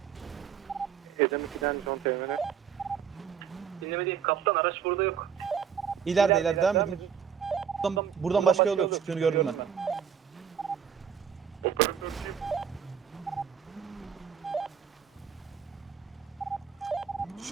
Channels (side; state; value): left; quieter; 7.9 dB